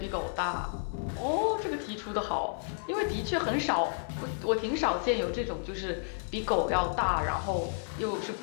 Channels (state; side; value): silent; right; 56 dB below the other